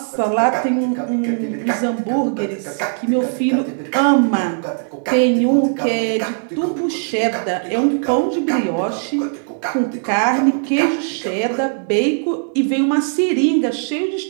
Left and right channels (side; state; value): left; silent; digital silence